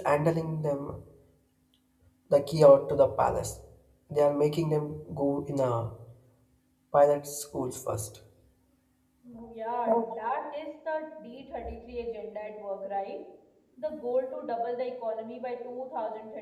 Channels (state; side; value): identical; both; correlation 1.00